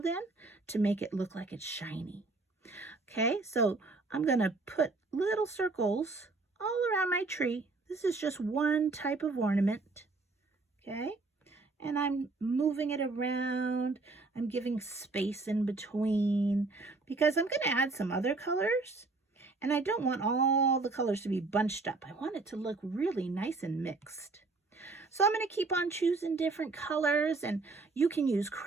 in to make it look like it's shiny. Okay, so I'm going to put little circles all around my tree. This is just one type of ornament. Okay, and I'm moving it around. I'm giving space in between because I'm going to add some other colors, and I don't want all the colors to be bunched up. I want it to look really nice and mixed. So I'm going to keep on choosing different colors, and you can use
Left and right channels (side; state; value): left; quieter; 3.6 dB